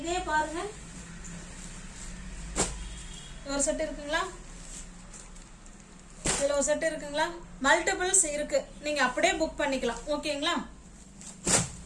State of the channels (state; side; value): identical; both; correlation 1.00